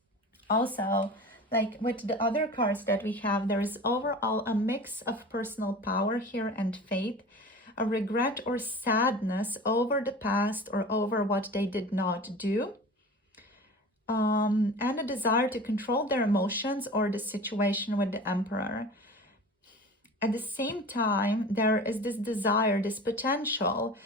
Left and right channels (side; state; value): both; normal; correlation 0.37